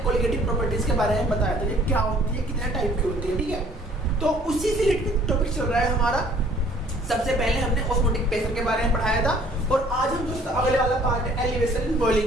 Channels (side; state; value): both; normal; correlation 0.56